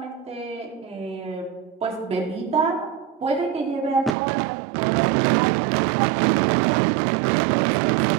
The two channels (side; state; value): left; drops out; at 4.1 s